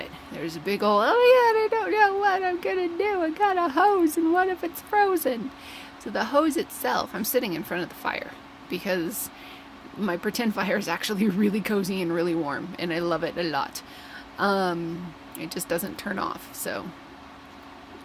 There's a big old, oh yeah, I don't know what I'm gonna do. I got a hose and what if it's frozen? So the hose itself, I'm sitting in front of the fire because my pretend fire is actually really cozy and really warm, and I love it a lot. It just doesn't turn off, so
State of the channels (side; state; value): both; identical; correlation 1.00